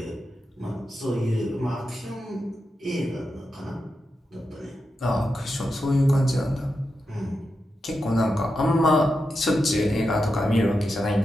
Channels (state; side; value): normal; both; correlation 0.88